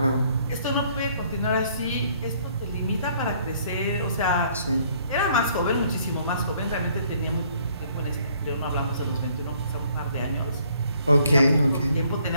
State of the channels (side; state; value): both; inverted; correlation -0.63